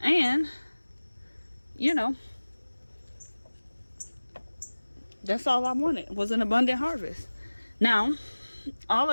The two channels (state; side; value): inverted; both; correlation -1.00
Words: And you know, that's all I wanted, was an abundant harvest. Now all